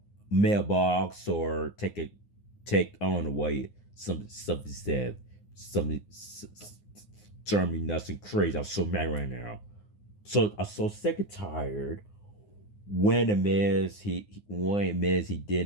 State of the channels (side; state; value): right; late; 9.7 ms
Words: mailbox or take on away something said something turn me nuts and crazy. I'm so mad right now. So I'm so sick and tired when the Miz he